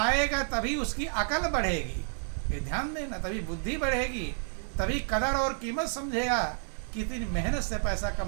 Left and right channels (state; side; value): silent; left; 58 dB below the other